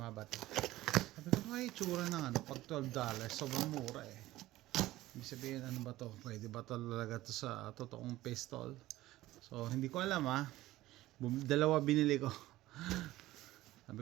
ba ito? Sabi ko ay itsura ng pag $12, sobrang mura eh. Ibig sabihin ano ba to? Pwede ba talaga to sa totoong pistol? So hindi ko alam ha. Dalawa binili ko. Sabi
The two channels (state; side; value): quieter; left; 16.4 dB